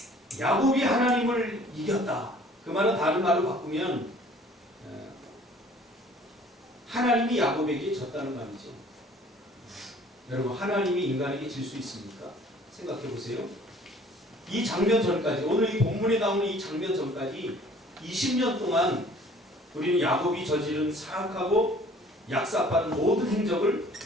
야곱이 하나님을 이겼다. 그 말은 다른 말로 바꾸면 하나님이 야곱에게 졌다는 말이죠. 여러분, 하나님이 인간에게 질 수 있습니까? 생각해 보세요. 이 장면 전까지, 오늘 이 본문에 나오는 이 장면 전까지 20년 동안 우리는 야곱이 저지른 사악하고 약삭빠른 모든 행적을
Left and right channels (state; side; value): normal; both; correlation 0.53